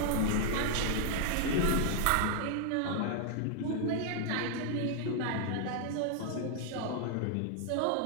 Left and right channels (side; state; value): both; different; correlation 0.00